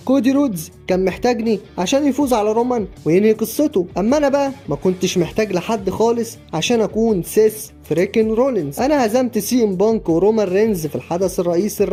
كودي رودز كان محتاجني عشان يفوز على رومان وينهي قصته. اما انا بقى ما كنتش محتاج لحد خالص عشان اكون سيس فريكن رولينز. انا هزمت سي ام بانك ورومان رينز في الحدث الرئيسي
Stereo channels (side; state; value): both; identical; correlation 1.00